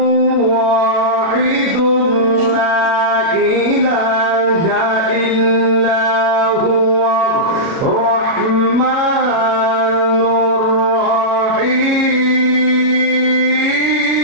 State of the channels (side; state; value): left; late; 37 ms